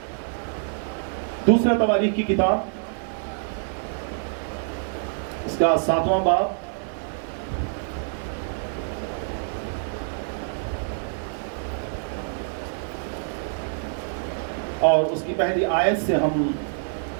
دوسرا تواریخ کی کتاب, اس کا 7واں باب, اور اس کی پہلی آیت سے ہم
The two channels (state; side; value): silent; left; 61 dB below the other